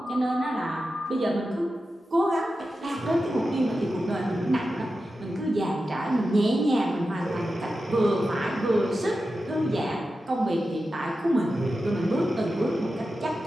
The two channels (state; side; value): normal; both; correlation 0.92